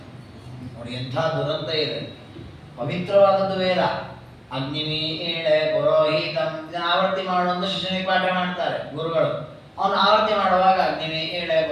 ನೋಡಿ ಎಂಥ ದುರಂತ ಇದೆ. ಪವಿತ್ರವಾದದ್ದು ವೇದ. ಅಗ್ನಿಮೀಳೆ ಪುರೋಹಿತಂ ಆವರ್ತಿ ಮಾಡುವಂತ ಶಿಷ್ಯನಿಗೆ ಪಾಠ ಮಾಡ್ತಾರೆ ಗುರುಗಳು. ಅವನು ಆವರ್ತಿ ಮಾಡುವಾಗ ಅಗ್ನಿಮೀಳೆ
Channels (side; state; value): both; identical; correlation 1.00